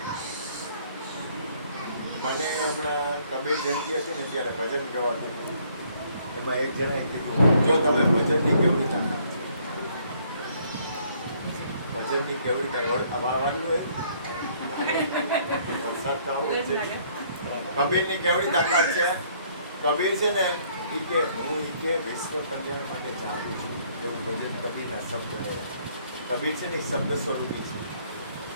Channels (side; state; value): both; inverted; correlation -0.64